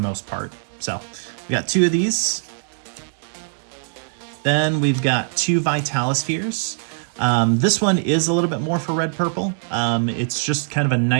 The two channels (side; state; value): left; silent; 64 dB below the other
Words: part. So we got 2 of these. Then we've got 2 Vitalispheres. This one is a little bit more for red purple. It's just kind of a